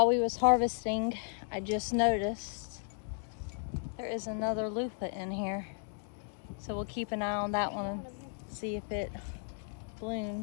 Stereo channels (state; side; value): silent; right; 55 dB below the other